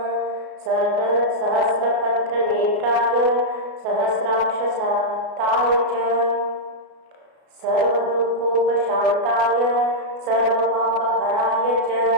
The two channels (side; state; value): left; late; 33 ms